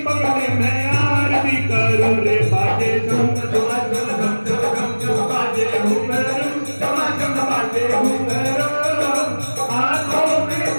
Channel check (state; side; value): inverted; both; correlation -1.00